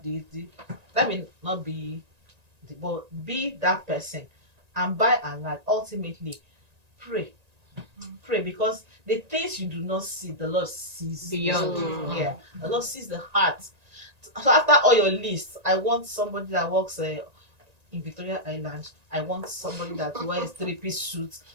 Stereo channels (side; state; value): left; late; 1.9 ms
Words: this? That may not be, but be that person. And by and large, ultimately, pray. Pray, because the things you do not see, the Lord sees Beyond. Yeah, the Lord sees the heart. So after all your lists, I want somebody that works in Victoria Island. I want somebody that wears 3-piece suits.